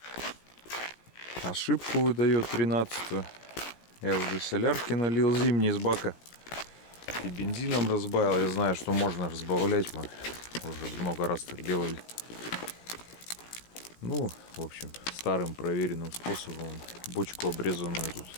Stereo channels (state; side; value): late; right; 17 ms